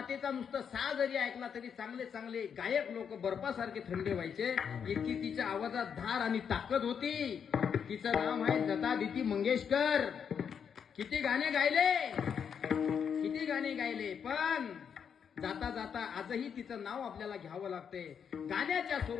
नुसतं सा जरी ऐकला तरी चांगले चांगले गायक लोक बर्फासारखे थंडे व्हायचे. इतकी तिच्या आवाजात धार आणि ताकद होती. तिचं नाव आहे लतादिती मंगेशकर. किती गाणे गायले, किती गाणे गायले, पण जाता जाता आजही तिचं नाव आपल्याला घ्यावं लागते. गाण्याच्या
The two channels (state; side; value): quieter; right; 7.3 dB